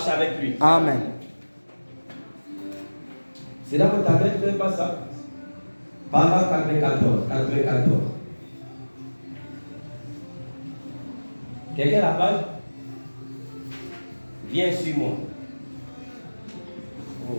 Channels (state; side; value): inverted; both; correlation -1.00